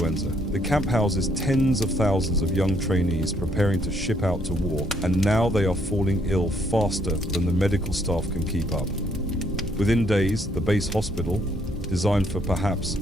The camp houses tens of thousands of young trainees preparing to ship out to war, and now they are falling ill faster than the medical staff can keep up. Within days, the base hospital, designed for perhaps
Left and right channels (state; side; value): normal; both; correlation 0.69